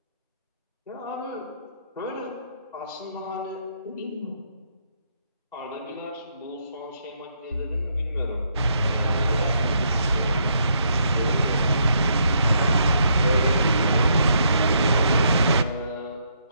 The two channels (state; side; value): inverted; both; correlation -0.74